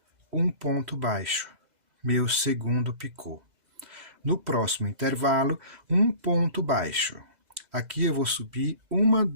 um ponto baixo, meu segundo picô. No próximo intervalo, um ponto baixo. Aqui eu vou subir 1,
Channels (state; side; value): late; left; 2.0 ms